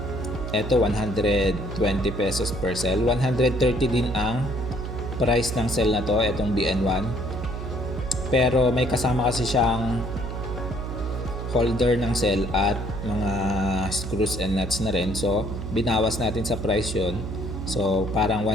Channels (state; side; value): noise; right; hum, 6 dB below the sound